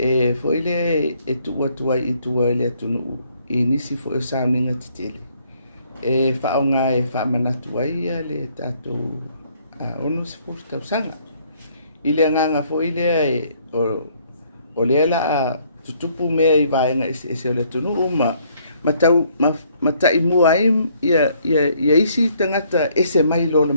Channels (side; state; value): both; inverted; correlation -0.65